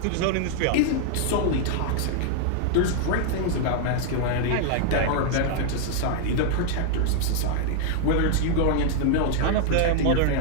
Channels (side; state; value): both; different; correlation 0.00